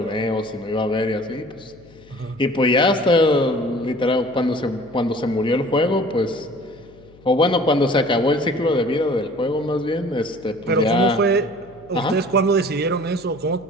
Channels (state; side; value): noise; left; hum, 25 dB below the sound